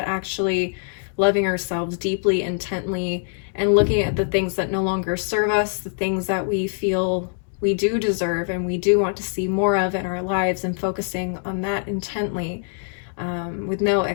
actually loving ourselves deeply, intently, and looking at the things that no longer serve us, the things that we feel we do deserve and we do want to see more of in our lives, and focusing on that intently, with no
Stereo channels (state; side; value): silent; right; 63 dB below the other